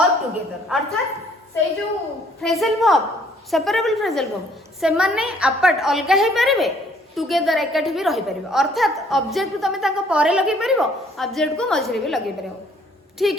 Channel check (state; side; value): normal; both; correlation 0.62